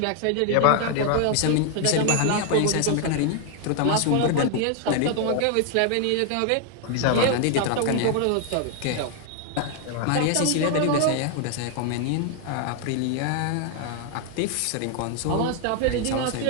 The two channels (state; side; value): different; both; correlation 0.00